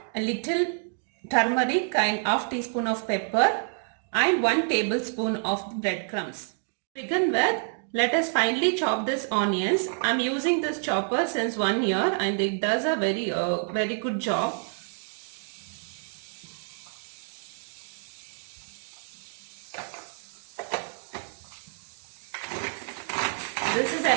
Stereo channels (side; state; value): left; silent; 57 dB below the other